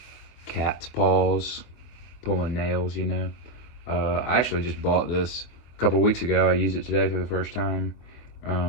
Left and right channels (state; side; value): late; right; 24 ms